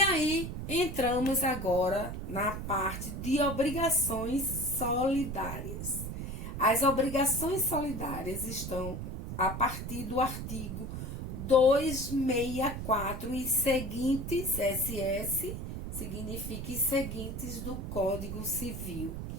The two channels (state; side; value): noise; right; rumble, 6 dB below the sound